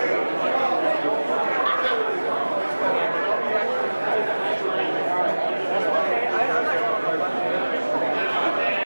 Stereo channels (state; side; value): inverted; both; correlation -1.00